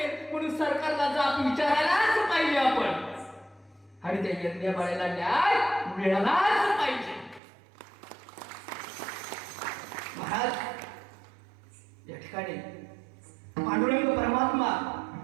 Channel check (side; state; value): left; drops out; at 7.4 s